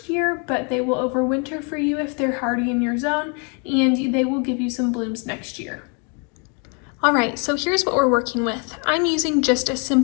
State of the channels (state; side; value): quieter; right; 36.3 dB